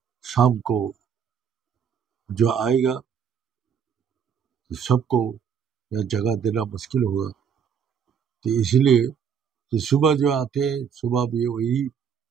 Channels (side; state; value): left; quieter; 7.4 dB